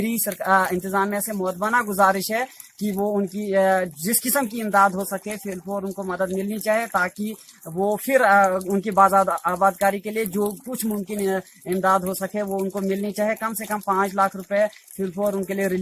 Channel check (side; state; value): both; identical; correlation 1.00